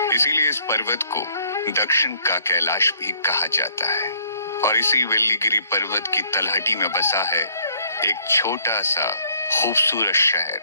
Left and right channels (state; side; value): inverted; both; correlation -0.63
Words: इसीलिए इस पर्वत को दक्षिण का कैलाश भी कहा जाता है। और इसी वेल्लीगिरी पर्वत की तलहटी में बसा है एक छोटा सा खूबसूरत शहर